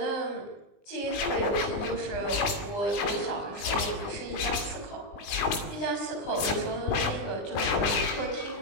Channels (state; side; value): late; right; 20 ms